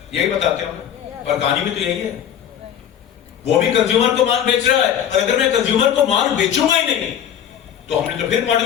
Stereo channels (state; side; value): quieter; right; 9.6 dB